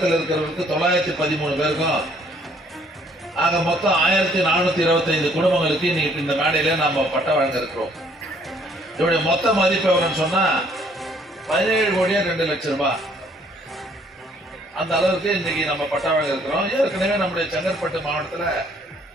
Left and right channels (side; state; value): both; normal; correlation 0.63